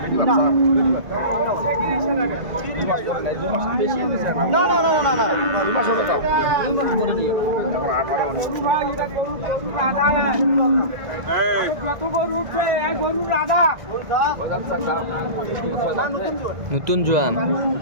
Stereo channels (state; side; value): late; left; 2.0 ms